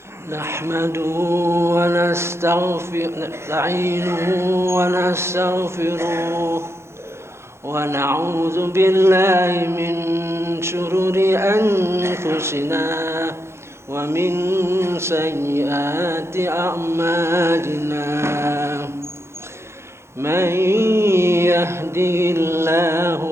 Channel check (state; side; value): late; left; 0.13 ms